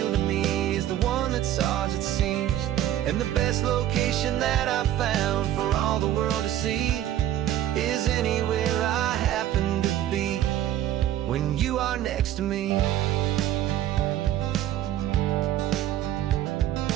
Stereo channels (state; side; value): quieter; left; 12.3 dB